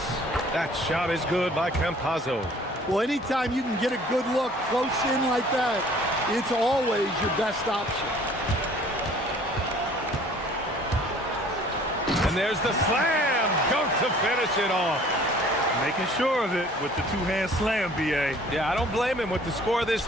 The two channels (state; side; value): normal; both; correlation 0.53